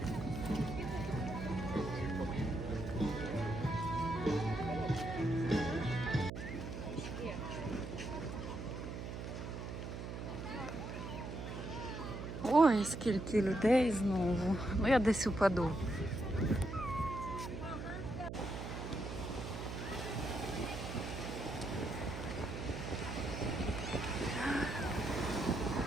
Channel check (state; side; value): noise; right; hum, 6 dB below the sound